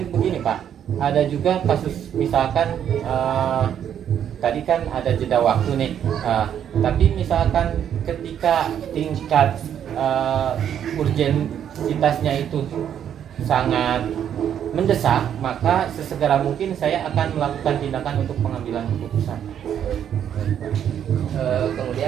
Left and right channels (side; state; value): left; quieter; 9.4 dB